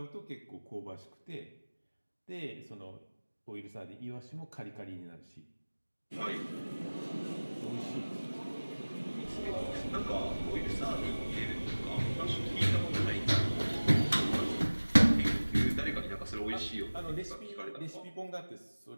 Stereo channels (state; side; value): inverted; both; correlation -1.00